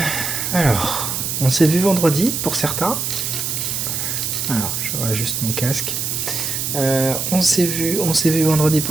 alors, on s'est vu vendredi pour certains. Alors, je réajuste mon casque. On s'est vu vendredi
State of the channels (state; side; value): noise; right; hiss, 2 dB below the sound